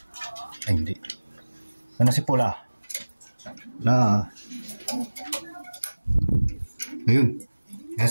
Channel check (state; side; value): inverted; both; correlation -1.00